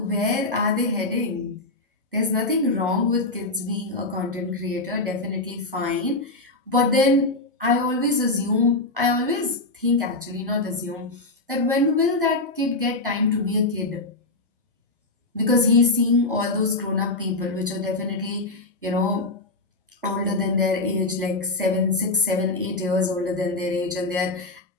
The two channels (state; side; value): quieter; right; 3.1 dB